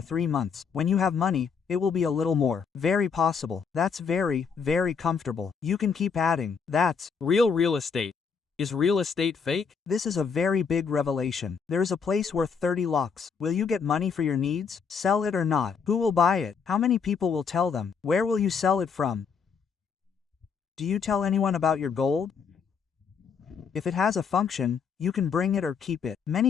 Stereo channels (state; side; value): quieter; right; 6.1 dB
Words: 3 months. When you have money, it will be a little more. Very possible. That's very comfortable. You can keep adding. That's real estate. Is real estate fake? This is a very big revelation. There is a place worth 30 lakhs. Will you get money for your needs? Sell it or not? Who will buy it? How many people will tell them? Where will you sell it from? Do you tell anyone about your gold? If it has a function, you can bring it or keep it. Many